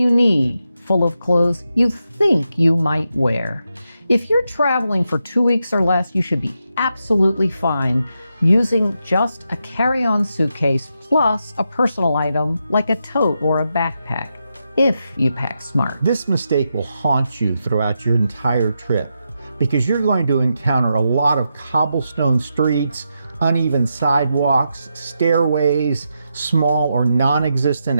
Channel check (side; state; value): both; inverted; correlation -0.85